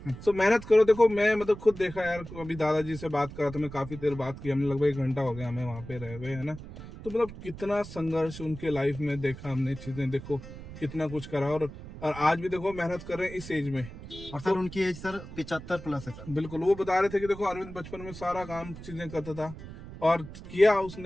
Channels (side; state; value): right; noise; rumble, 13 dB below the sound